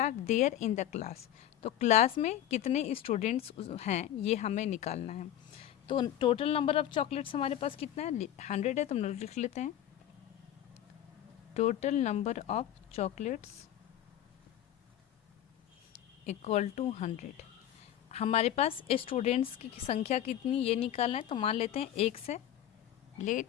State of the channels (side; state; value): right; quieter; 11.6 dB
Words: there in the class, तो क्लास में कितने स्टूडेंट्स हैं ये हमें निकालना है। तो टोटल नंबर ऑफ चॉकलेट्स हमारे पास कितना है, 100 है, तो हम लोग लिख लेते हैं total number of chocolates equal to 100। हमारे पास स्टूडेंट्स की संख्या कितनी ये निकालना है, तो मान लेते हैं 1 से।